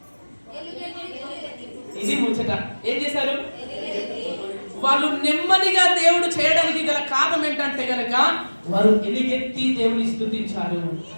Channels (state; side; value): inverted; both; correlation -1.00